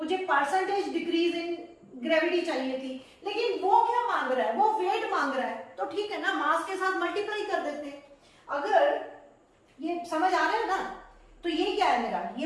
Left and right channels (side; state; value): both; identical; correlation 1.00